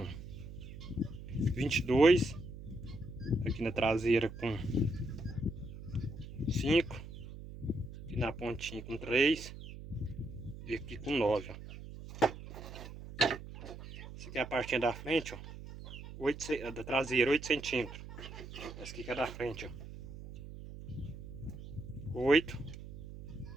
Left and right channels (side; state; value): right; noise; hum, 12 dB below the sound